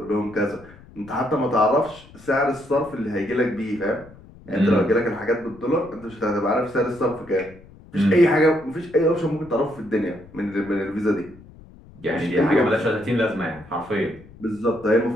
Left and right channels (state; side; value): noise; left; rumble, 22 dB below the sound